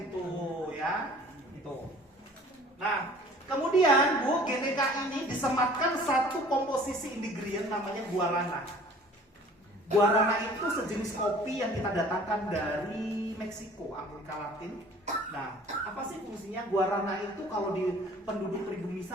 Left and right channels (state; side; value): normal; both; correlation 0.50